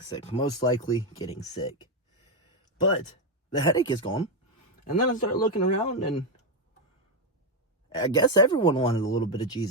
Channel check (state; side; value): normal; both; correlation 0.05